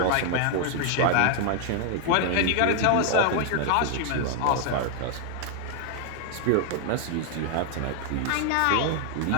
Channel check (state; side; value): different; both; correlation 0.00